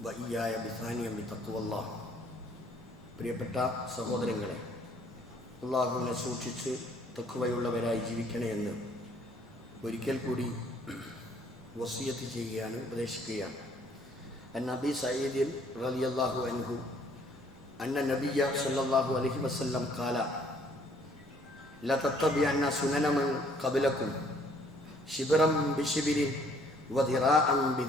وإياي بثانية بتقوى الله. പ്രിയപ്പെട്ട സഹോദരങ്ങളെ, അള്ളാഹുവിനെ സൂക്ഷിച്ച് തഖ്വയുള്ളവരായി ജീവിക്കണേ എന്ന് ഒരിക്കൽ കൂടി വസിയത്ത് ചെയ്യുകയാണ്, ഉപദേശിക്കുകയാണ്. അൻ അബീ സഈദ് റളിയല്ലാഹു അൻഹു അന്ന നബിയ സല്ലല്ലാഹു അലൈഹി വസല്ലം ഖാല ല തത്തബിഅന്ന സുനന മൻ ഖബലകും ശിബ്റൻ ബിശിബ്രിൻ വദിറാഅൻ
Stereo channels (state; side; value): normal; both; correlation 0.62